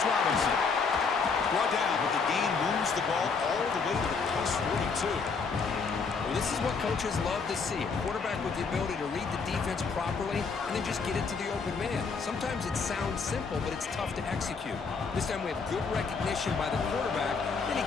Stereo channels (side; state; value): right; quieter; 5.0 dB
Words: Robinson. Brought down, but the gain moves the ball all the way to the plus 42. Well, this is what coaches love to see. A quarterback with the ability to read the defense properly and then just get it to the open man. Sometimes it sounds simple, but it's tough to execute. This time we have good recognition by the quarterback, then he